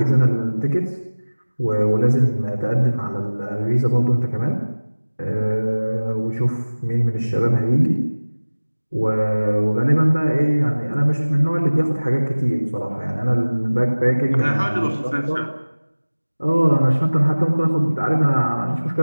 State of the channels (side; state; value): both; inverted; correlation -1.00